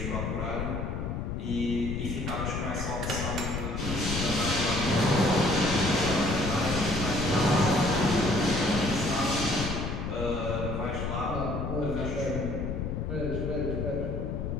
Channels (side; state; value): left; noise; rumble, 3 dB below the sound